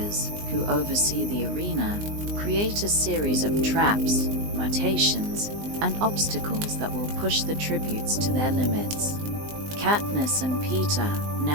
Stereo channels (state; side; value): late; left; 19 ms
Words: who oversee the arena, create a series of traps, mutations, and obstacles that will push the tributes to their limits. Katniss and Peter,